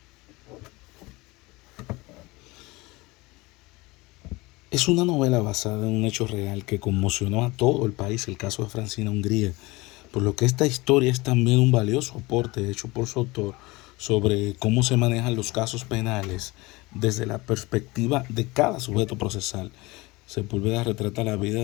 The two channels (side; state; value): right; quieter; 22.5 dB